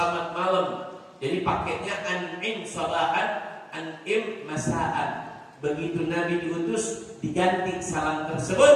malam. Jadi pakainya an'im sabahan, an'im masaan. Begitu Nabi diutus, diganti salam tersebut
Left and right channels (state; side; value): identical; both; correlation 1.00